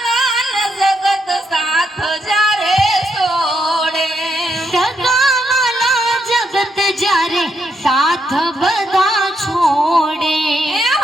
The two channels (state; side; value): normal; both; correlation 0.78